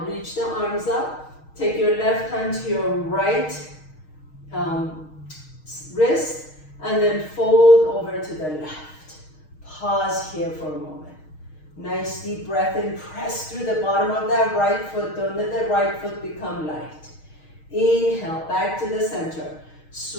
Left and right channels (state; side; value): late; right; 6.4 ms